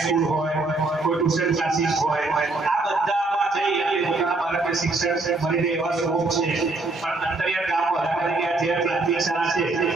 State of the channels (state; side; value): quieter; left; 3.3 dB